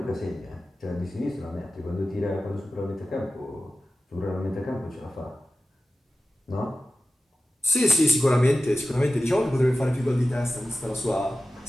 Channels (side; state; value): both; normal; correlation 0.95